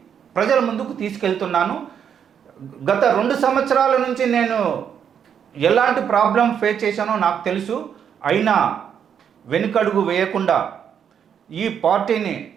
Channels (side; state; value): left; quieter; 8.1 dB